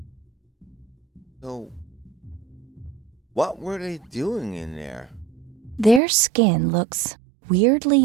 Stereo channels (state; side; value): drops out; left; at 6.0 s